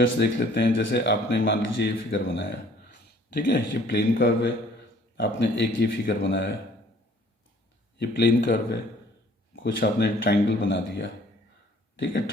देख लेते हैं। जैसे आपने मान लीजिए ये फिगर बनाया, ठीक है, ये प्लेन कर्व है। आपने एक ये फिगर बनाया, ये प्लेन कर्व है। कुछ आपने ट्रायंगल बना दिया। ठीक है,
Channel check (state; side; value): normal; both; correlation 0.56